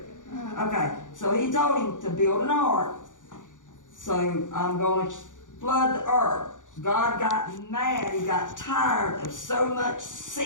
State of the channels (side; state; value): right; late; 0.87 ms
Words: Okay, so he told him to build an ark. So I'm going to flood the earth. God got mad. He got tired of so much